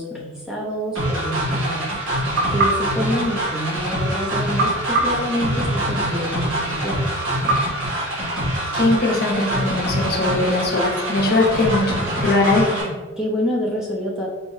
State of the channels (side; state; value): both; normal; correlation 0.35